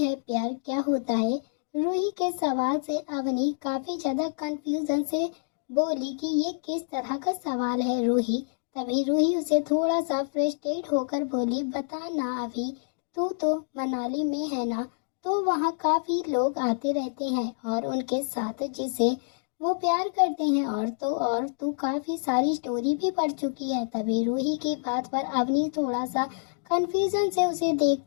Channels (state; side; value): silent; right; digital silence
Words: प्यार क्या होता है? रूही के सवाल से अवनी काफी ज्यादा कंफ्यूजन से बोली कि ये किस तरह का सवाल है रूही। तभी रूही उसे थोड़ा सा फ्रस्ट्रेट होकर बोली, बता ना अभी, तू तो मनाली में है ना, तो वहाँ काफी लोग आते रहते हैं और उनके साथ जिसे वो प्यार करते हैं, और तो और तू काफी सारी स्टोरी भी पढ़ चुकी है। तभी रूही की बात पर अवनी थोड़ा सा कंफ्यूजन से उसे